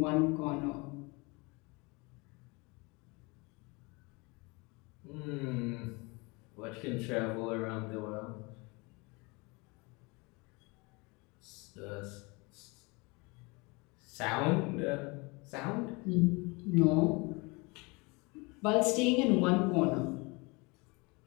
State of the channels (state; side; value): quieter; right; 27.2 dB